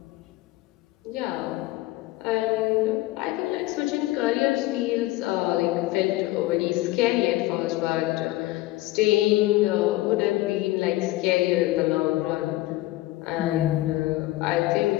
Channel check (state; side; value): quieter; right; 17.7 dB